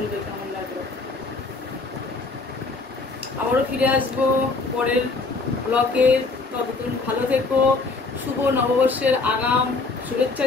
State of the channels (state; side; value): quieter; right; 3.7 dB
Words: কেমন লাগলো। আবারও ফিরে আসবো পরের ব্লগে, ততদিন ভালো থেকো। শুভ নববর্ষের আগাম শুভেচ্ছা